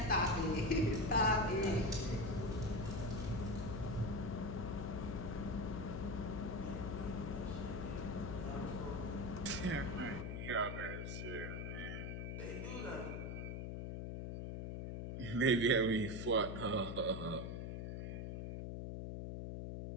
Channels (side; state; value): left; noise; hum, 4 dB below the sound